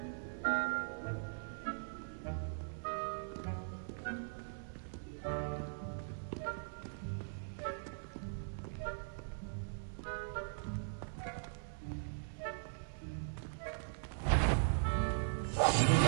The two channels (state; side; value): silent; left; digital silence